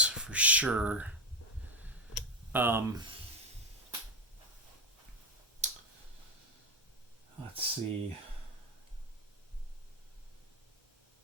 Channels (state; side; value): normal; both; correlation 0.10